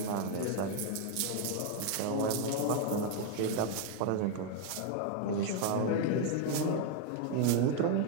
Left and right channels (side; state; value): both; different; correlation 0.01